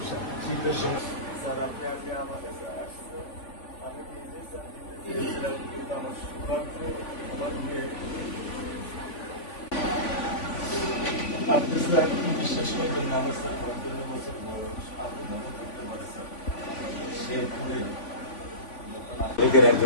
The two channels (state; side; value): late; right; 3.5 ms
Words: শীতের সময় স্যার আপনি আজকে আমার কাছে আসছেন, আমি নিজে স্যার দিতে কিন্তু আমার সৌভাগ্য আমার মেয়ে। আপনি স্যার বিশ্বাস করবেন না, আমার স্যার 55 বছর বয়স, আপনি মনে করতে পারেন স্যার শেরপুরে লীগের